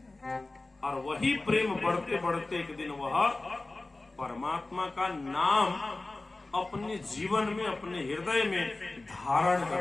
और वही प्रेम बढ़ते बढ़ते एक दिन वह परमात्मा का नाम अपने जीवन में, अपने हृदय में धारण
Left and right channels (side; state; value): right; quieter; 3.1 dB